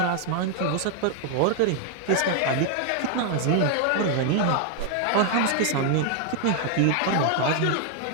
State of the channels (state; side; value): different; both; correlation 0.00